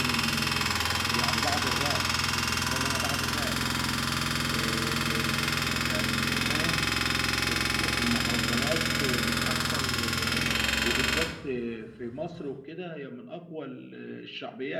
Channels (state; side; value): identical; both; correlation 1.00